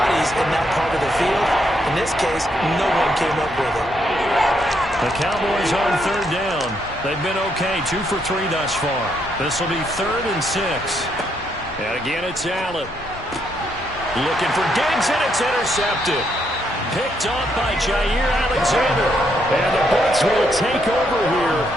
in that part of the field. In this case, no one came up with it. The Cowboys on 3rd down. They've been okay, 2 for 3 thus far. This will be 3rd and 6. And again, it's Allen. Looking for Diggs, and it's intercepted. Picked off by Jair Alexander. And the Bucs will take over here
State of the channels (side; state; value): both; normal; correlation 0.75